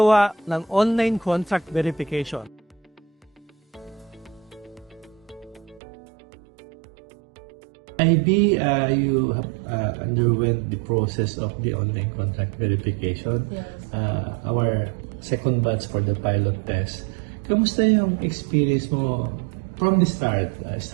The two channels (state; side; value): drops out; left; at 5.8 s